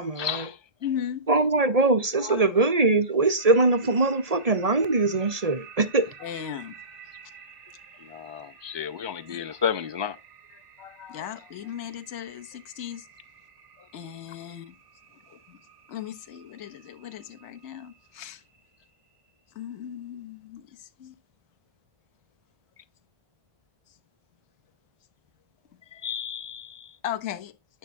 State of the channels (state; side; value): late; left; 1.7 ms